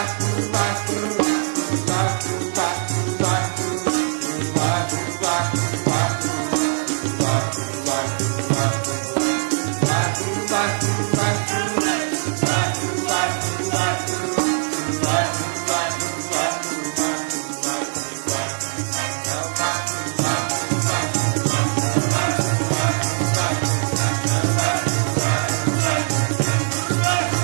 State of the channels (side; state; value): left; silent; digital silence